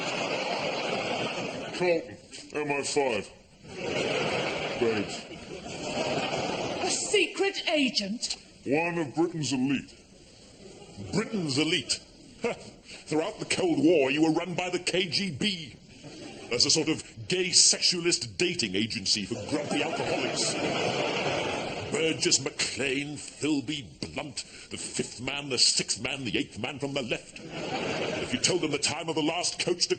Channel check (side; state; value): both; identical; correlation 1.00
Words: Colton, MI5. Babes, A secret agent? one of Britain's elite. Britain's elite. Throughout the Cold War, you were run by the KGB. as a sort of gay sexualist dating agency for grumpy alcoholics. Burgess, McLean, Philby, Blunt, the fifth man, the sixth man, the eighth man from the left. If you told them the time of the last coach to